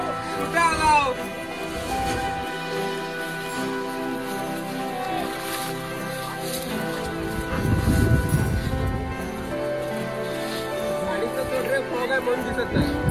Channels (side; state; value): both; identical; correlation 1.00